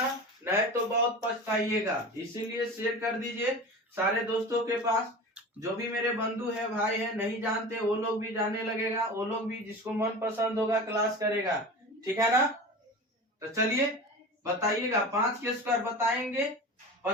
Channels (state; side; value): normal; both; correlation 0.33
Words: नहीं तो बहुत पछताइएगा। इसीलिए शेयर कर दीजिए सारे दोस्तों के पास। जो भी मेरे बंधु है भाई है नहीं जानते वो लोग भी जानने लगेगा, वो लोग भी जिसको मन पसंद होगा क्लास करेगा। ठीक है ना, तो चलिए बताइएगा। 5 के स्क्वायर बताएंगे